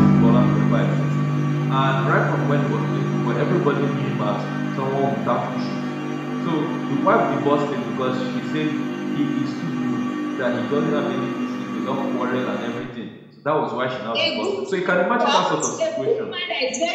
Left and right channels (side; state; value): both; identical; correlation 1.00